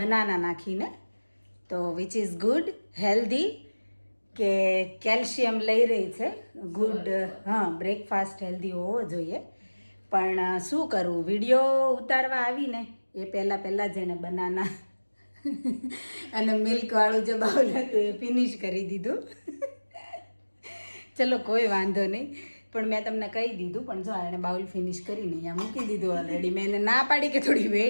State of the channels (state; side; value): inverted; both; correlation -1.00